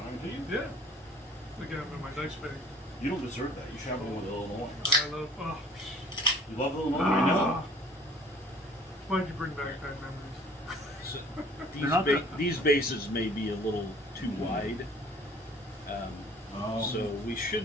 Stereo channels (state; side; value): normal; both; correlation 0.52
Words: it, do you? Yeah. I got them in my dice bag. You don't deserve that. You should have one with Illinois. I love. Oh, You love Illinois, I know. why'd you bring back bad memories? So They're not these bases may be a little too wide. Oh. So we